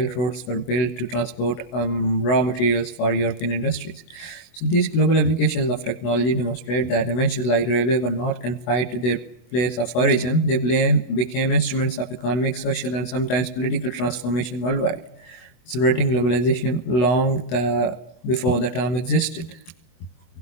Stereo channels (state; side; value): late; right; 24 ms